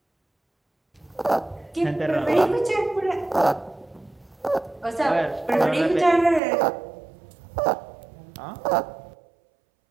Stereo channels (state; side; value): drops out; left; at 6.4 s